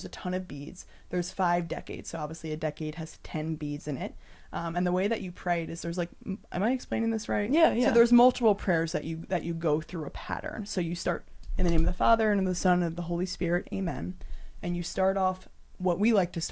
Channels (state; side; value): identical; both; correlation 1.00